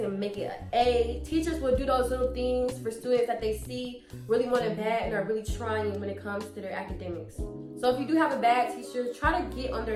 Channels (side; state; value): both; identical; correlation 1.00